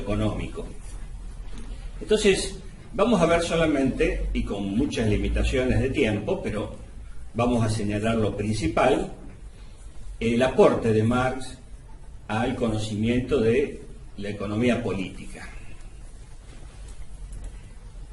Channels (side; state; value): both; identical; correlation 1.00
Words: Entonces, vamos a ver solamente, y con muchas limitaciones de tiempo, pero vamos a señalar lo principal, el aporte de Marx al conocimiento de la economía política.